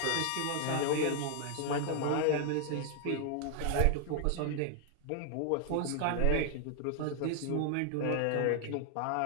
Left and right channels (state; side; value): different; both; correlation 0.00